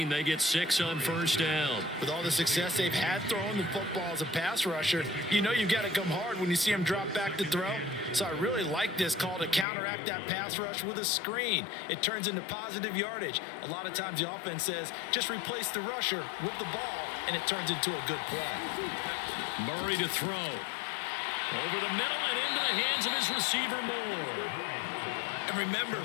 They get 6 on first down. With all the success they've had throwing the football as a pass rusher, you know you've got to come hard when you see them drop back to throw. So I really like this call to counteract that pass rush with a screen. It turns into positive yardage. A lot of times the offense says, just replace the rusher with the ball, and it turns into a good play. Murray to throw. Over the middle and into the hands of his receiver, Moore. And remember,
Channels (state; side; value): drops out; right; at 9.7 s